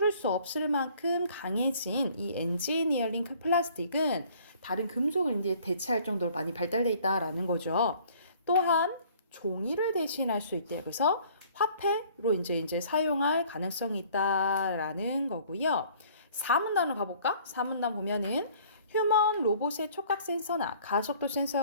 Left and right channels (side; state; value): both; inverted; correlation -0.55